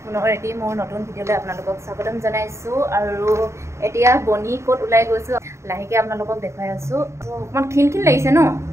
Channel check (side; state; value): left; late; 0.14 ms